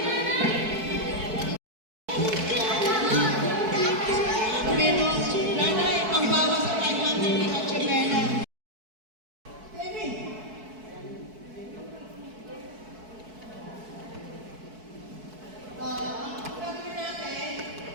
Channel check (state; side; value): late; left; 4.6 ms